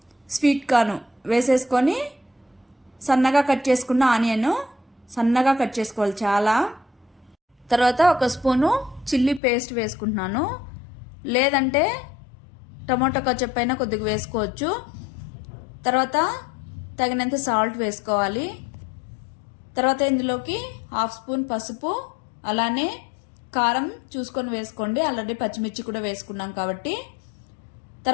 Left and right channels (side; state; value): right; drops out; at 9.4 s